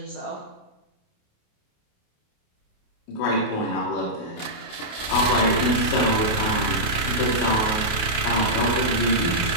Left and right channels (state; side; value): late; right; 28 ms